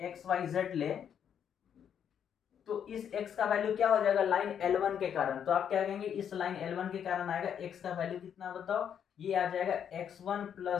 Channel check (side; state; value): right; quieter; 8.5 dB